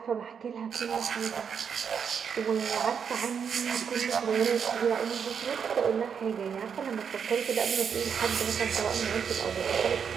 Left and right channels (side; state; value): left; quieter; 7.0 dB